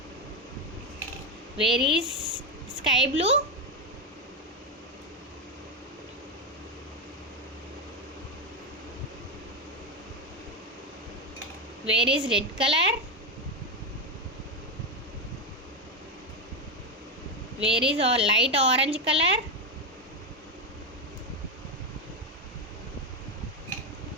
Where is sky blue? Where is red colour? Where is light orange colour?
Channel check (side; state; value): both; normal; correlation 0.10